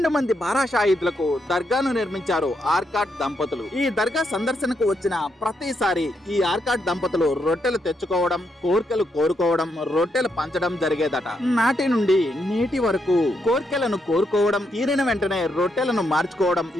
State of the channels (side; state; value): both; normal; correlation 0.79